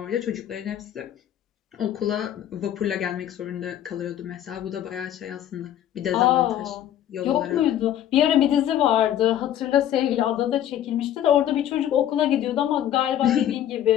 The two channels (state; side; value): quieter; right; 11.2 dB